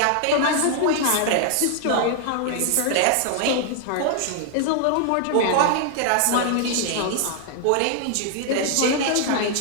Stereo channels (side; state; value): both; different; correlation 0.00